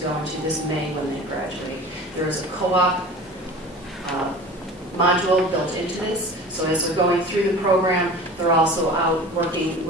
go into this May when they graduate. There is a co-op module built into this, so as they're going through the program, they're also out working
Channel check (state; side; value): normal; both; correlation 0.38